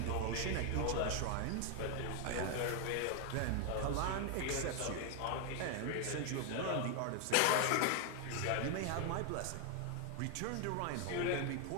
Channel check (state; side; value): different; both; correlation 0.00